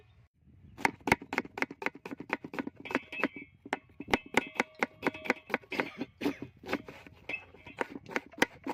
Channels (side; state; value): both; identical; correlation 1.00